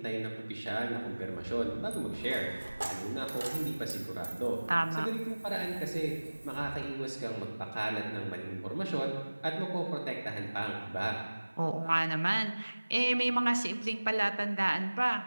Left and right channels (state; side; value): inverted; both; correlation -1.00